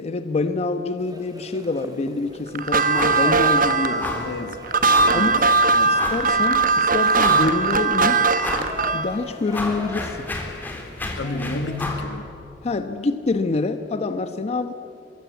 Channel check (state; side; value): normal; both; correlation -0.14